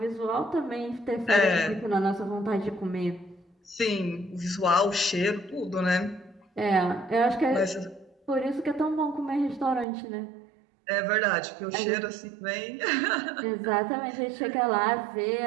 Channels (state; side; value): drops out; left; at 9.9 s